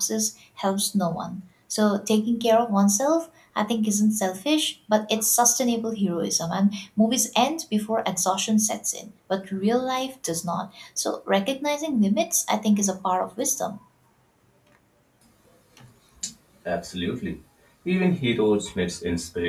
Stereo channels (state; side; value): identical; both; correlation 1.00